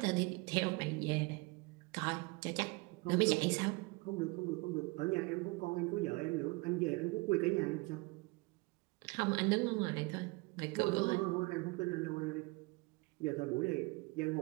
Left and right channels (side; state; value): left; quieter; 26.0 dB